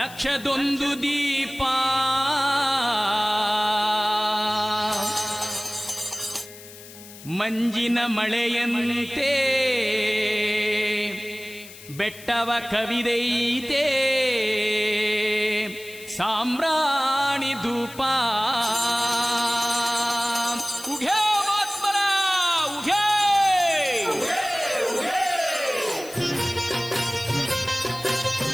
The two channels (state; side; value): noise; left; hiss, 17 dB below the sound